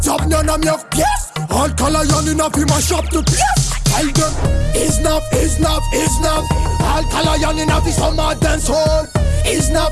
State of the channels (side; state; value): both; identical; correlation 1.00